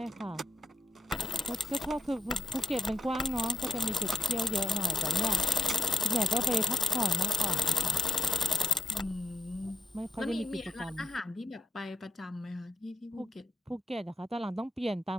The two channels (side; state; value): both; normal; correlation 0.72